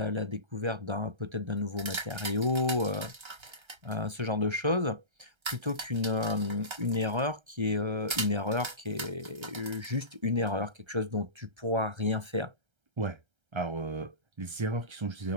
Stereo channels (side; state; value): left; late; 1.3 ms